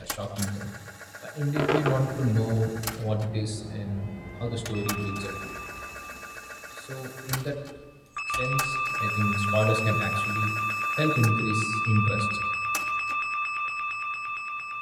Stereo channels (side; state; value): both; identical; correlation 1.00